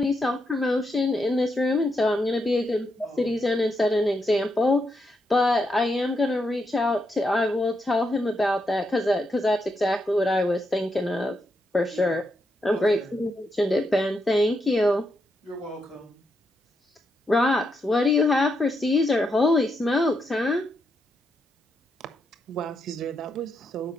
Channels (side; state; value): both; normal; correlation 0.82